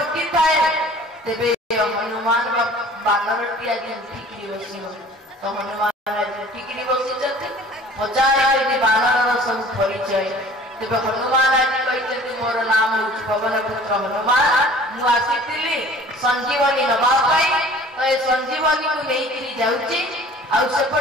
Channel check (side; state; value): both; normal; correlation 0.48